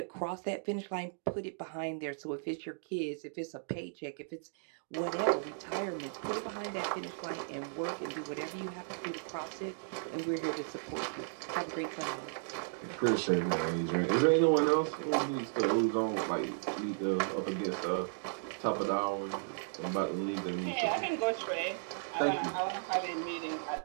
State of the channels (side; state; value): left; silent; digital silence